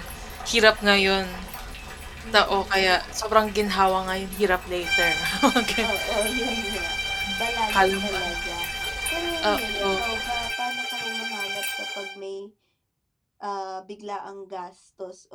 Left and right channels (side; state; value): both; identical; correlation 1.00